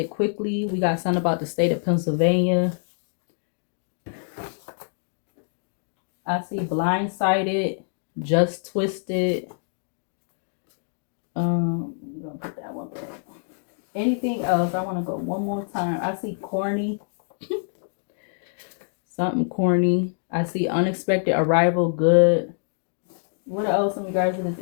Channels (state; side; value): silent; right; digital silence